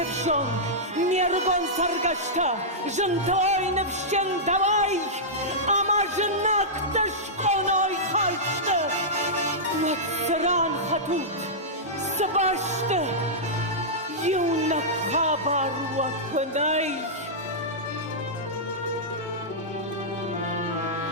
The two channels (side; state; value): both; normal; correlation -0.12